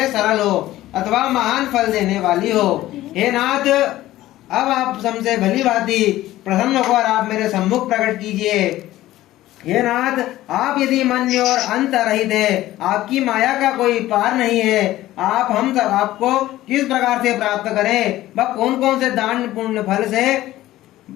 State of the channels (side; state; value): right; quieter; 15.3 dB